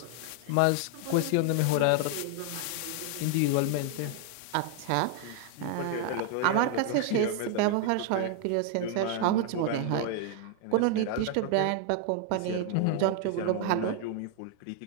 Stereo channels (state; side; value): different; both; correlation 0.00